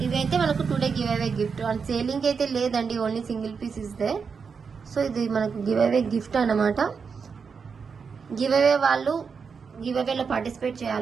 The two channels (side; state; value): left; quieter; 5.7 dB